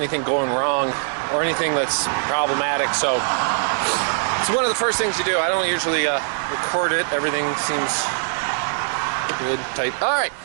going wrong or anything that's problematic. So it's one of the first things you do. I don't usually record it. Everything seems good, tight. All right.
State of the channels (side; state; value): left; silent; 64 dB below the other